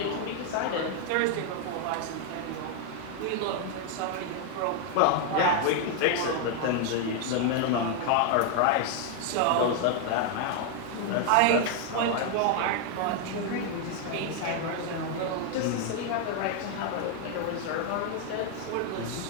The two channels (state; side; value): different; both; correlation 0.01